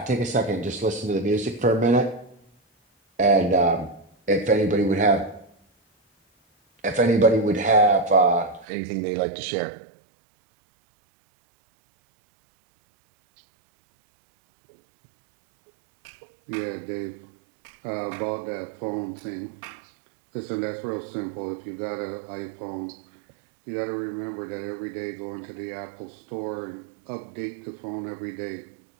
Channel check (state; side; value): drops out; left; at 8.7 s